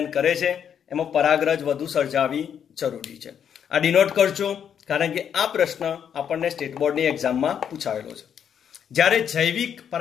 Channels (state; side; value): quieter; right; 8.4 dB